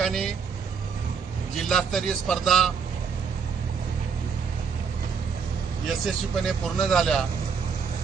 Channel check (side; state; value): left; quieter; 6.1 dB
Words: जिल्हास्तरीय स्पर्धा यशस्वीपणे पूर्ण झाल्या